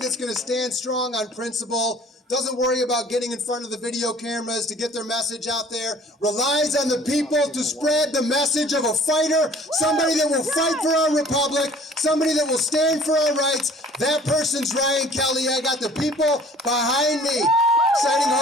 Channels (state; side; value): normal; both; correlation 0.51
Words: going to stand strong on principle, doesn't worry about getting in front of the video cameras to get their message out there, relies on the people to spread the message of a fighter, somebody that will fight for our republic, somebody that will stand for our rights. That person's Ryan Kelley. I got the people behind me. Exciting,